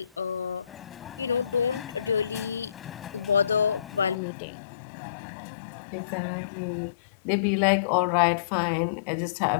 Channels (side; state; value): right; drops out; at 4.2 s